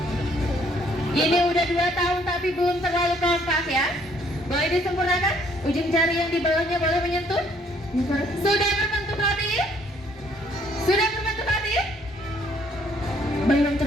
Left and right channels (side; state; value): both; normal; correlation 0.65